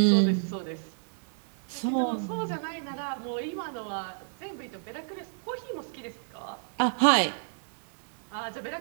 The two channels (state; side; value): silent; left; digital silence